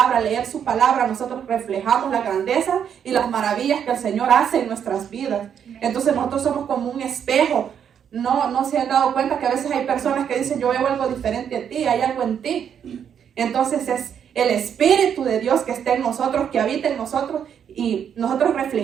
leer su palabra, nosotros reflejamos la grandeza y las maravillas que el Señor hace en nuestras vidas. Entonces nosotros somos como un espejo. No se han dado cuenta que a veces hay personas que dicen: yo veo algo diferente a ti, hay algo en ti. Entonces es el Espíritu de Dios que está en nosotros, que habita en nosotros, y nosotros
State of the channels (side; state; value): left; quieter; 8.3 dB